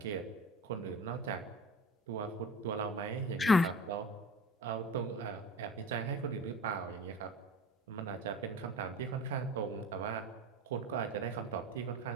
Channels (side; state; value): both; normal; correlation 0.36